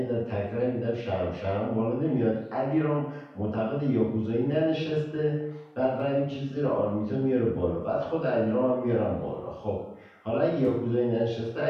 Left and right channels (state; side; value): identical; both; correlation 1.00